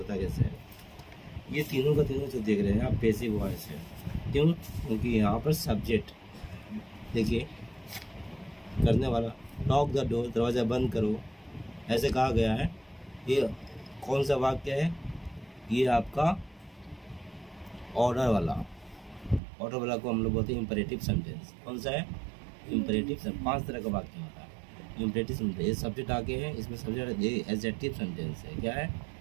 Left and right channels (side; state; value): left; drops out; at 19.4 s